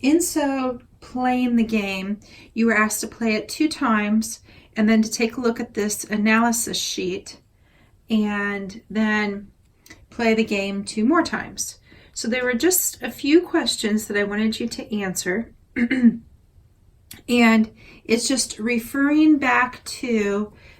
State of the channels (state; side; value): identical; both; correlation 1.00